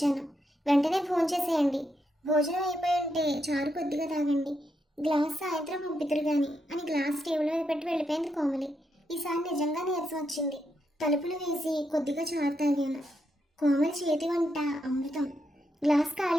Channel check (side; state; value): both; normal; correlation 0.81